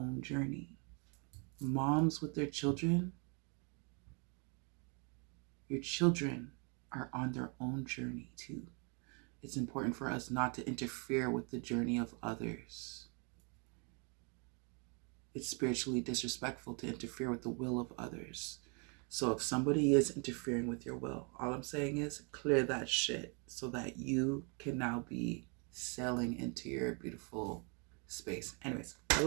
journey. Moms with their children, your children are on their own journey too. It's important for us not to interfere with the journey of others. It's spiritually disrespectful to interfere with the will of others. So if somebody is interfering with your will, all I'm saying is clear that shit so that you can now be sailing into your beautiful space. Anyways, I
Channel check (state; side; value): quieter; left; 35.8 dB